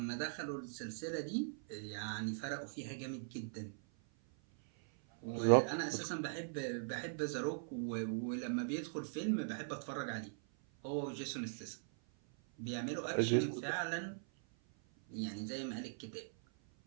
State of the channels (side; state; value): left; silent; 51 dB below the other